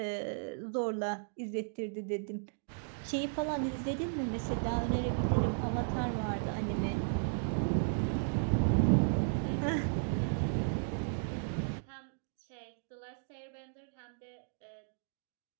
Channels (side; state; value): left; silent; digital silence